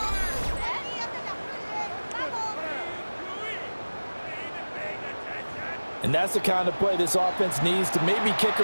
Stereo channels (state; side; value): inverted; both; correlation -1.00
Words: And that's the kind of play this offense needs to maybe kick